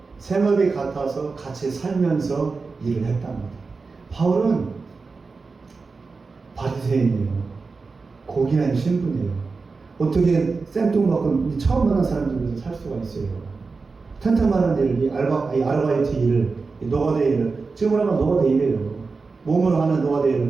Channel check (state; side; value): quieter; left; 4.3 dB